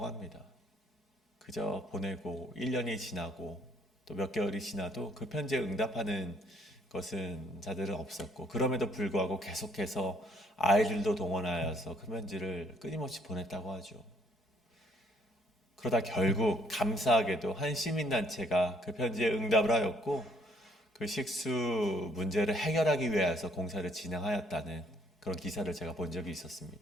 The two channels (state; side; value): normal; both; correlation 0.66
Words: 합니다. 그저 보내고 1년이 지나고 또 몇 개월이 지나도 그 편지에 응답하는 것은 자들은 없었고, 그럼에도 불구하고 계속해서 아이들도 동원하여서 그 편지를 끊임없이 보냈다고 하죠. 그러다 결국 감사하게도 한 시민단체가 그 편지에 응답을 하였고 그 식수 문제를 해결하기 위해서 공사를 진행하였다는 그런 기사를 제가 본 적이